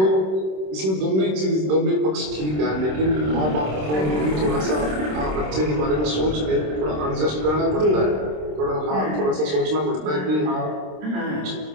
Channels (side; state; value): left; late; 26 ms